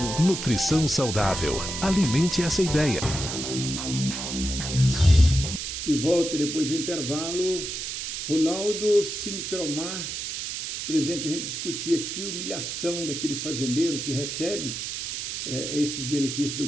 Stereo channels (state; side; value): noise; right; hiss, 5 dB below the sound